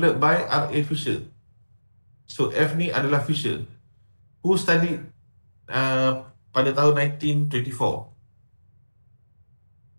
by R.A. Fisher. So F ni adalah Fisher, who studied pada tahun 1924.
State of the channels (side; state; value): both; inverted; correlation -1.00